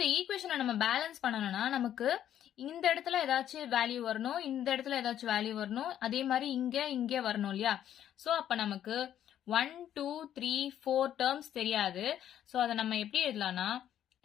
ஈக்குவேஷனை நம்ம பேலன்ஸ் பண்ணணும்னா நமக்கு இந்த இடத்துல ஏதாச்சும் வேல்யூ வரணும், இந்த இடத்துல ஏதாச்சும் வேல்யூ வரணும், அதே மாதிரி இங்க வரணும் இல்லையா? சோ அப்ப நமக்கு 1, 2, 3, 4 terms தெரியாது. சோ அதை நம்ம எப்படி எழுதலாம்னா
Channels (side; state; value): right; quieter; 10.7 dB